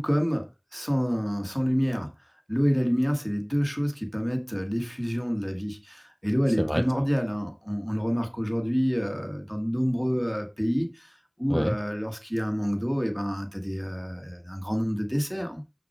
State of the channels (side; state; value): both; identical; correlation 1.00